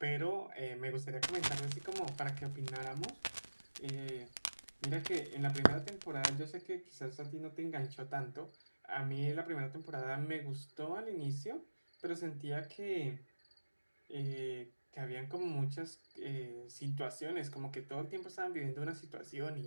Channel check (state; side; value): inverted; both; correlation -1.00